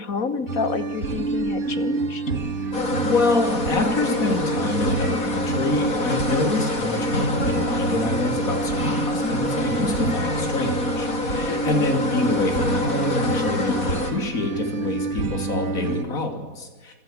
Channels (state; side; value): late; right; 4.1 ms